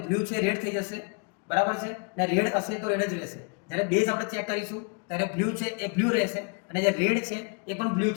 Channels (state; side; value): quieter; right; 32.9 dB